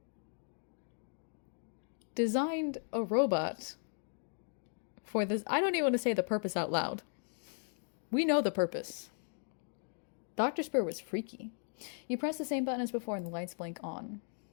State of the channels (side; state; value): right; silent; 53 dB below the other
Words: designed a robot for this. I don't even want to say the purpose out loud. We know the purpose. Dr. Spur was freaky. You press the same button as before and the lights blink on.